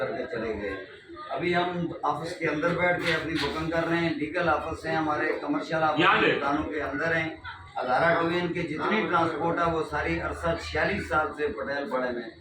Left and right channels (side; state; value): both; identical; correlation 1.00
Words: चले गए। अभी हम ऑफिस के अंदर बैठ के अपनी बुकिंग कर रहे हैं। लीगल ऑफिस है हमारे, कमर्शियल ऑफिस दुकानों के अंदर हैं। हज़ारा डिवीजन की जितनी ट्रांसपोर्ट है वो सारी अरसा 46 साल से पटेल पड़े में